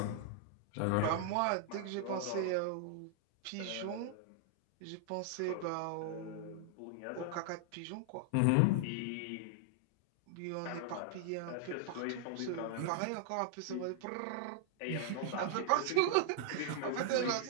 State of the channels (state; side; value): different; both; correlation 0.00